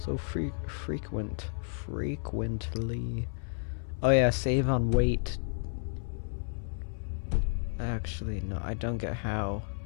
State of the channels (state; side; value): silent; right; 57 dB below the other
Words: frequently? Oh yeah, save on wait. Actually, no, I don't get how